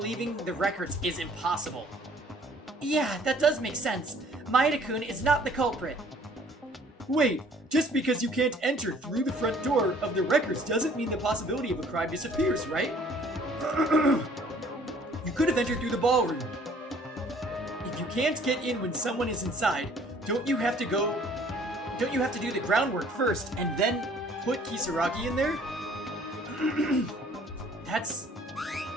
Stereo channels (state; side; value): normal; both; correlation 0.56